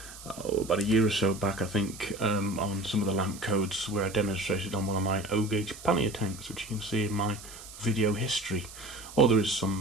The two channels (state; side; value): noise; right; hiss, 15 dB below the sound